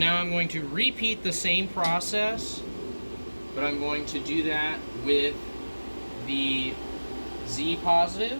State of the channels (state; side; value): inverted; both; correlation -1.00